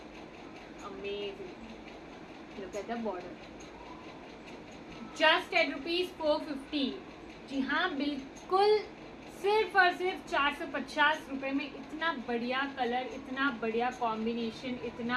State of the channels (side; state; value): both; identical; correlation 1.00